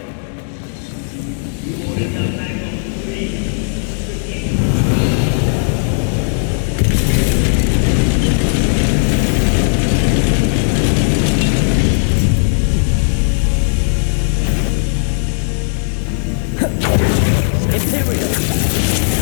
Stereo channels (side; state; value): right; silent; 65 dB below the other